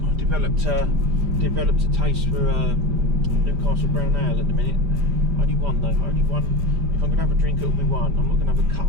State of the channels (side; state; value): left; late; 5.0 ms